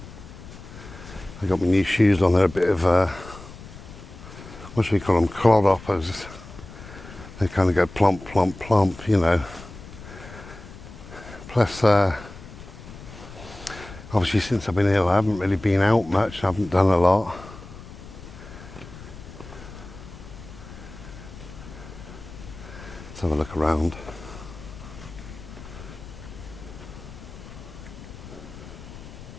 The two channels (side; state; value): left; noise; rumble, 15 dB below the sound